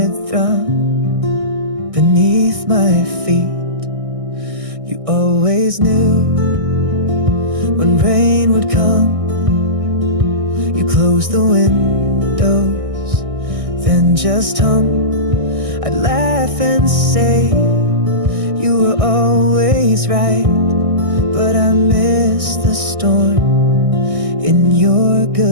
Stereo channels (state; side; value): late; left; 1.6 ms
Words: thrum beneath my feet. You always knew when rain would come, you close the windows, then just hum. I'd laugh and say you were always right, but I miss the storm in your